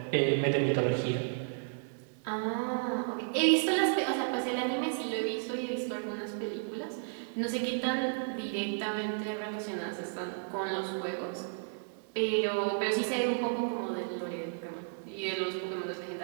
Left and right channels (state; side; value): silent; left; digital silence